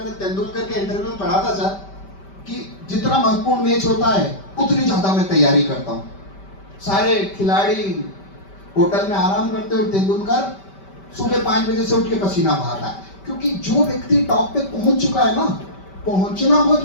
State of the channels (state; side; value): late; right; 5.1 ms